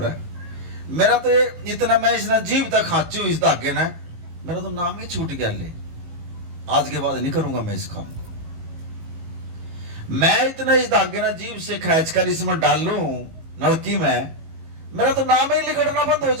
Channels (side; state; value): left; late; 18 ms